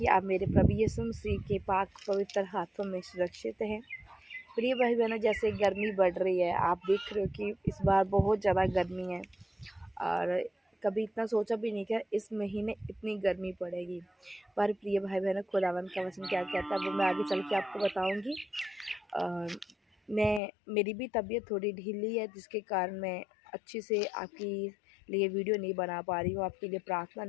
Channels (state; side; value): drops out; right; at 20.4 s